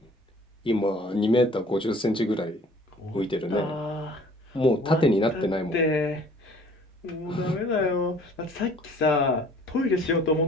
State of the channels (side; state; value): both; normal; correlation 0.53